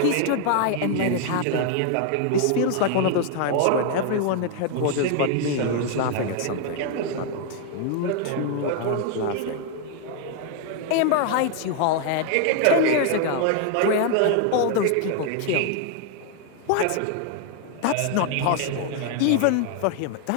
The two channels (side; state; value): both; different; correlation 0.00